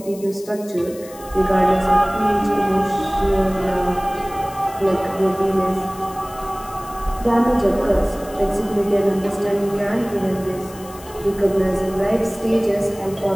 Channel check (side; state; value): left; noise; hiss, 19 dB below the sound